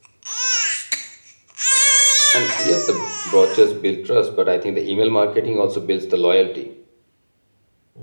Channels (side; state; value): both; inverted; correlation -1.00